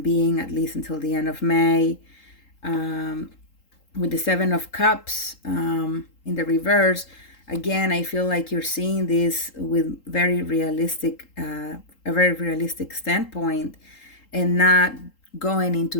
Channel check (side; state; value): right; late; 3.8 ms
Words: being, at least until the end of May. With the Seven of Cups in the reverse, again, I feel like you're seeing this with a very realistic standpoint, and not going into